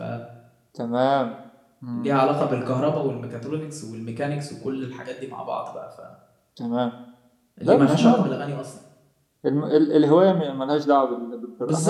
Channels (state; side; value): identical; both; correlation 1.00